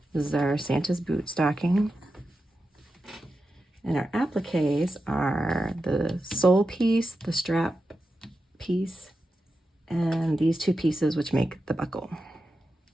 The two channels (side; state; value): both; normal; correlation 0.91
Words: This is our Santa's boot stocking. And our appliques are the sole piece, the strap piece, and these two pieces which make the buckle.